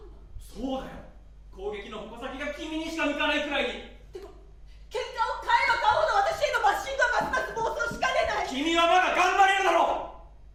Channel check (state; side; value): identical; both; correlation 1.00